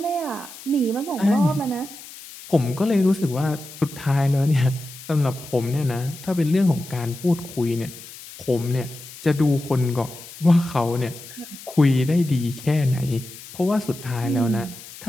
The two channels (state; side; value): noise; left; hiss, 16 dB below the sound